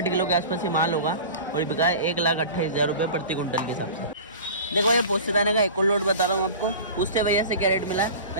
किलो के आसपास ये माल होगा और ये बिका है 1,28,000 रुपये प्रति कुंटल के हिसाब से। देखो ये पोस्ते दाने का एक और लोड बता रहा हूँ आपको। पूछते भैया से क्या रेट मिला।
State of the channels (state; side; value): inverted; both; correlation -0.35